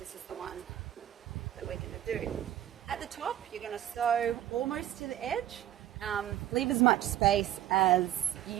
is the one that we're going to do. At the top, you're going to sew almost to the edge. Leave as much space as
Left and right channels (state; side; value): quieter; left; 12.5 dB